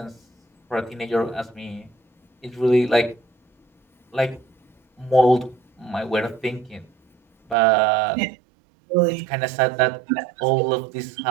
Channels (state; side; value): drops out; left; at 7.6 s